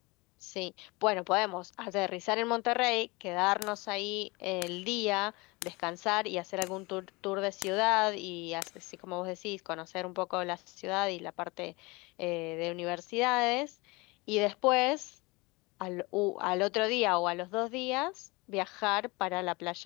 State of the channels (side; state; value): right; quieter; 25.0 dB